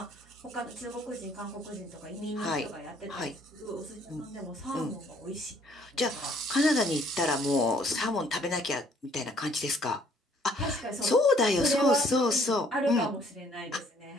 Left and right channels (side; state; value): both; normal; correlation 0.62